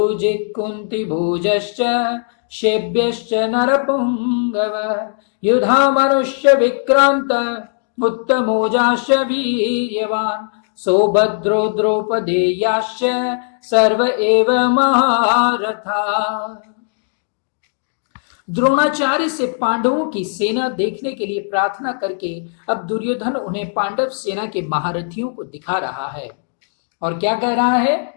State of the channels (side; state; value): right; silent; digital silence